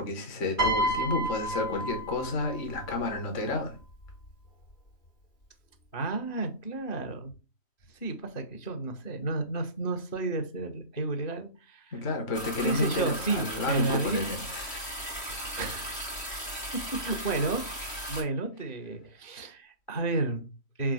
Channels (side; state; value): right; late; 3.1 ms